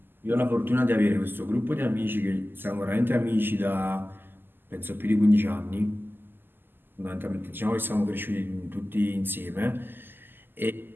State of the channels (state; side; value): late; left; 0.095 ms